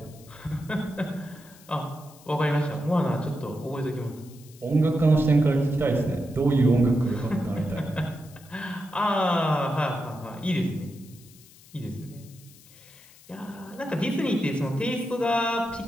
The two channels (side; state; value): left; noise; hiss, 24 dB below the sound